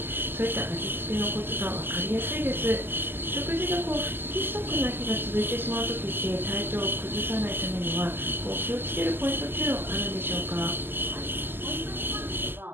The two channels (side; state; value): left; late; 0.098 ms